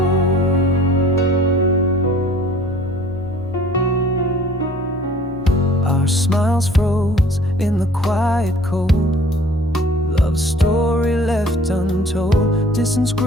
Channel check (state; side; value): normal; both; correlation 0.51